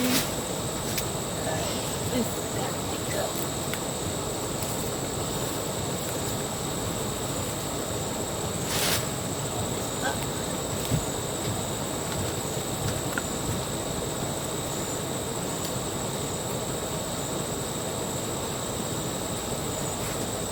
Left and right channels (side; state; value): both; identical; correlation 1.00